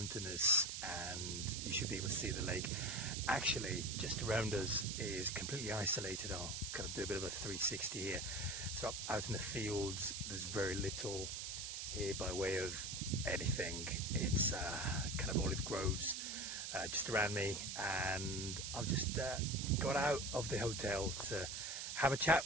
and you should be able to see the lake. Actually, just around us is completely isolated. I'll kind of do a bit of a 360 here. So out in the fields, there's very little here by way of anything. It's kind of olive groves just around me, and I've just got out of the hotel to have a chat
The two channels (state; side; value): noise; right; hiss, 4 dB below the sound